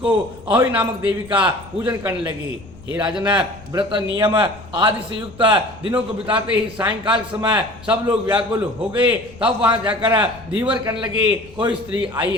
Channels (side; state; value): left; noise; rumble, 20 dB below the sound